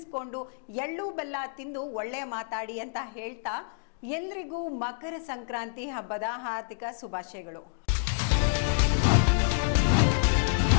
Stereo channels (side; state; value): right; silent; digital silence